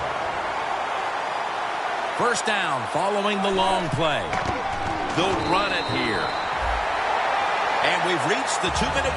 First down following the long play. They'll run it here. And we've reached the 2-minute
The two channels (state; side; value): identical; both; correlation 1.00